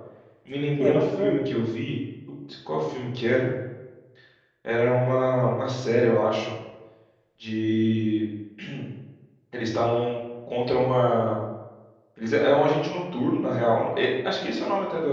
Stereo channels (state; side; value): identical; both; correlation 1.00